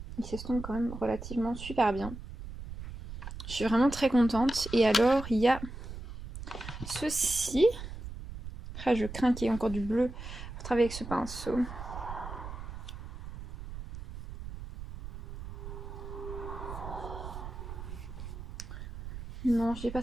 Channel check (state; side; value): noise; right; rumble, 10 dB below the sound